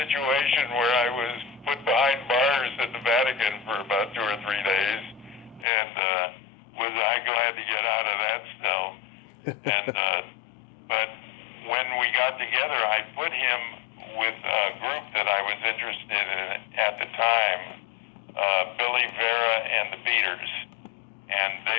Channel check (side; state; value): right; drops out; at 5.7 s